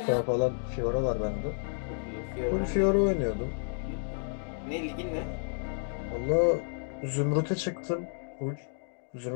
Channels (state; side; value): silent; right; digital silence